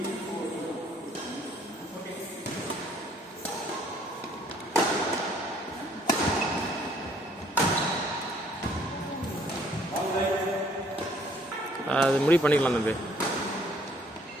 அது முடிவு பண்ணிக்கலாம் தம்பி.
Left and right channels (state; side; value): normal; both; correlation 0.62